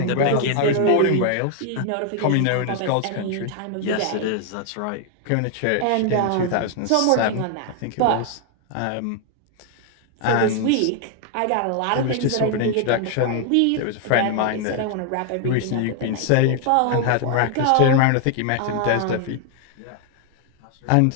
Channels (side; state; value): both; different; correlation 0.00